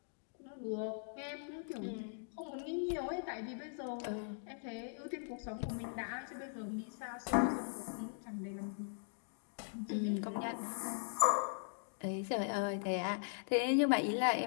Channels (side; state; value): right; silent; digital silence